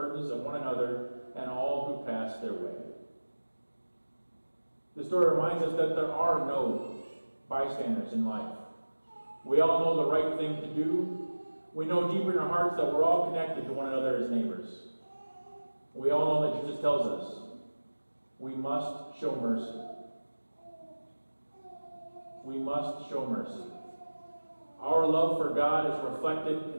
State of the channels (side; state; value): both; inverted; correlation -1.00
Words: of one another and all who pass their way. The story reminds us that there are no bystanders in life. We all know the right thing to do. We know deeper in our hearts that we're all connected to one another as neighbors. We all know that Jesus tells us we must show mercy. We must show mercy. Our love for God is reflected